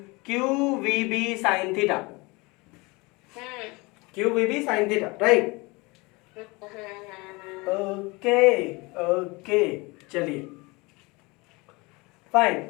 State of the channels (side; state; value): right; quieter; 25.4 dB